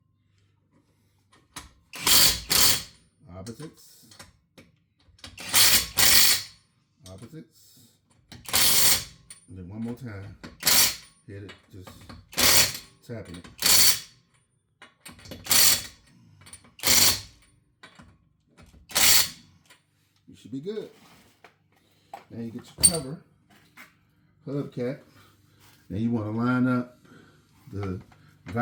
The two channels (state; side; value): identical; both; correlation 1.00